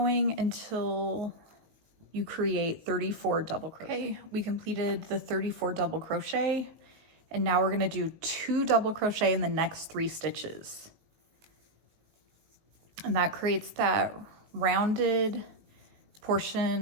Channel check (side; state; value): left; late; 19 ms